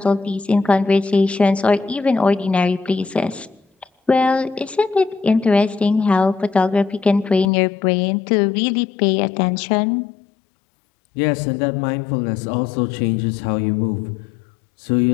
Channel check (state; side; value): drops out; right; at 7.5 s